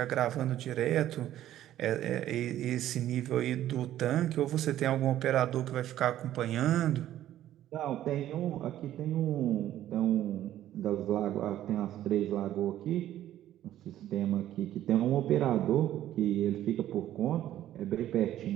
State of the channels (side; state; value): left; quieter; 12.7 dB